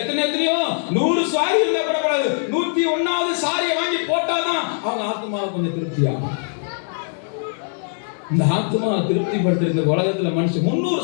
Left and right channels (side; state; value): right; silent; digital silence